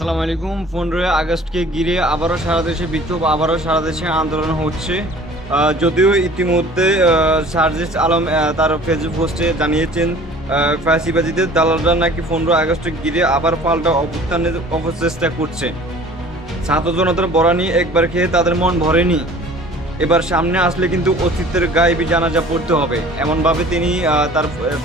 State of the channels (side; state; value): both; normal; correlation 0.48